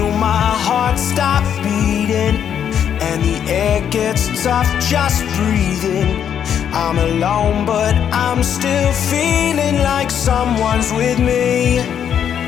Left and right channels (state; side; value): quieter; right; 8.8 dB